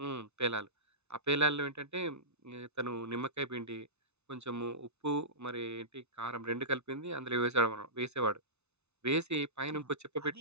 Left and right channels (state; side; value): late; left; 0.81 ms